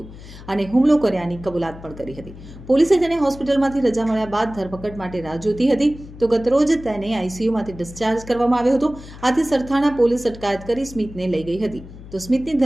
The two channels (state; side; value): noise; left; hum, 16 dB below the sound